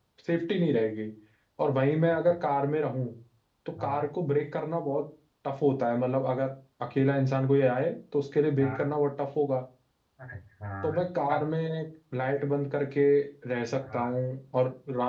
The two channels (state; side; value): identical; both; correlation 1.00